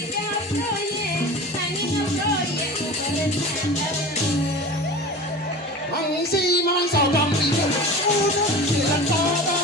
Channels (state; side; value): normal; both; correlation 0.34